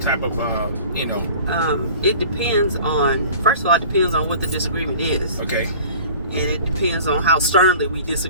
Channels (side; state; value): both; inverted; correlation -0.44